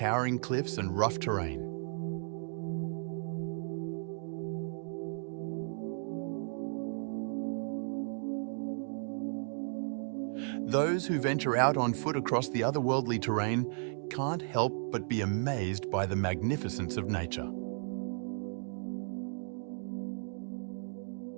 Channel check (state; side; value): silent; left; 55 dB below the other